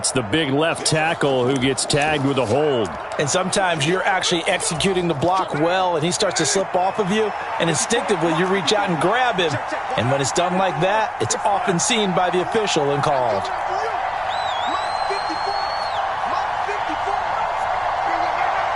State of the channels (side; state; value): both; identical; correlation 1.00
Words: the big left tackle who gets tagged with a hold. And sometimes you're actually executing the block well, and he starts to slip off of you, and instinctively you reach out and grab him. And when it's done like that, it's often seen by the official and called.